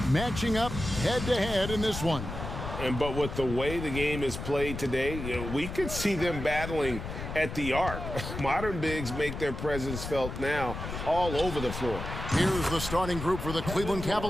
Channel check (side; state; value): left; noise; rumble, 7 dB below the sound